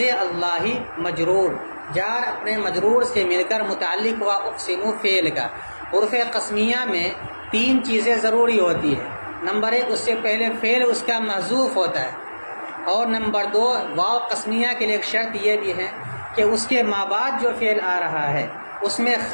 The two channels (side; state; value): both; inverted; correlation -1.00